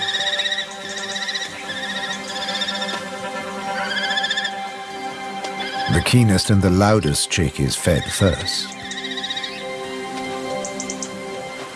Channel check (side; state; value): both; identical; correlation 1.00